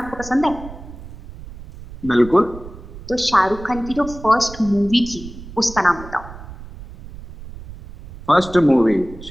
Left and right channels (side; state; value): right; noise; rumble, 15 dB below the sound